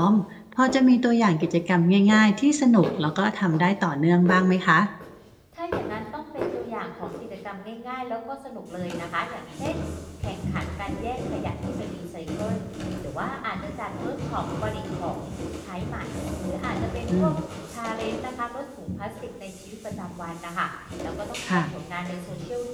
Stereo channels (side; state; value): both; identical; correlation 1.00